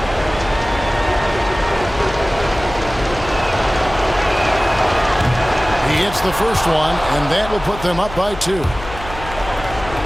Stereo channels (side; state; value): left; noise; hum, 12 dB below the sound